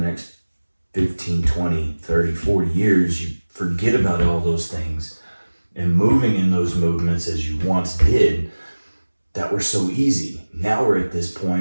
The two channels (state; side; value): inverted; both; correlation -1.00